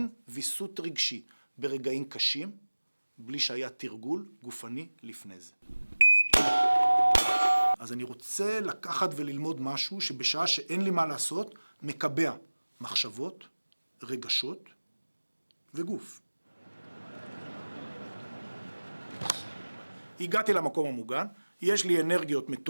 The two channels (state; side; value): inverted; both; correlation -1.00